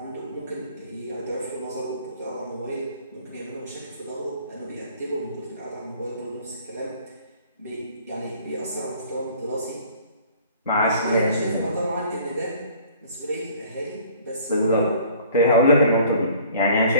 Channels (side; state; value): both; inverted; correlation -0.53